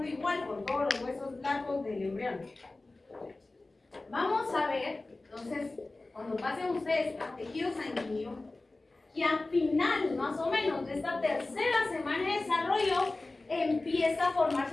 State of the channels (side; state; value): right; quieter; 3.1 dB